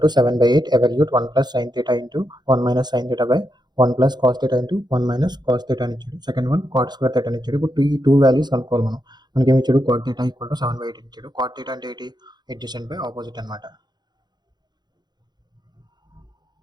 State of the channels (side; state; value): left; late; 0.21 ms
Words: to 7/8 evaluate 1 plus sine theta into 1 minus sine theta by 1 plus cos theta into 1 minus cos theta అని ఇచ్చాడు. Second one cot square theta అని ఇచ్చాడు. ఇప్పుడు ఈ టూ వాల్యూస్ కనుక్కోవాలి మనం. మనకి ఏమి ఇచ్చాడు, cot theta ఈక్వల్ టు 7/8 ఇచ్చాడు. cot theta అంటే ఏంటి, అడ్జసెంట్ బై ఆపోజిట్ అనమాట.